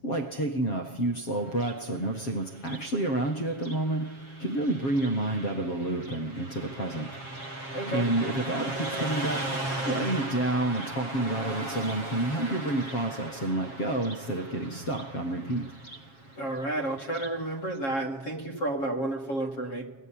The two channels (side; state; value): right; late; 7.4 ms